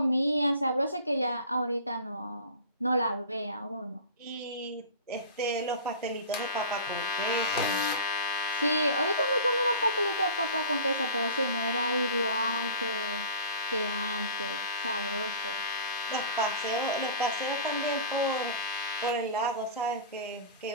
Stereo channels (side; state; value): both; inverted; correlation -0.37